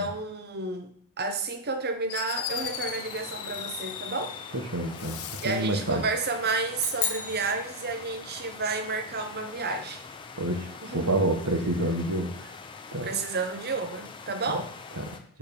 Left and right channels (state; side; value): normal; both; correlation -0.03